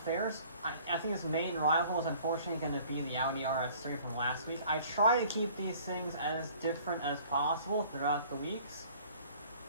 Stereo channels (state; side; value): inverted; both; correlation -0.52